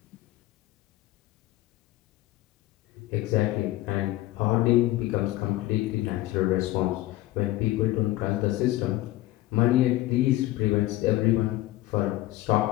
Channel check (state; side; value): quieter; right; 16.7 dB